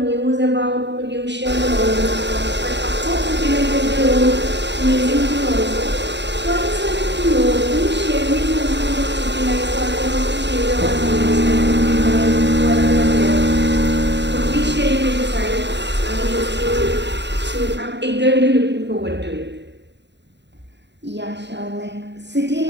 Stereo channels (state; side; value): late; left; 0.51 ms